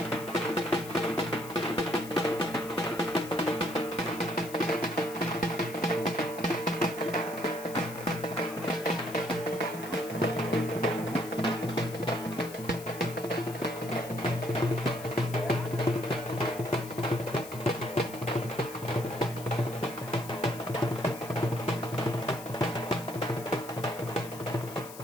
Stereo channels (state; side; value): noise; left; hiss, 15 dB below the sound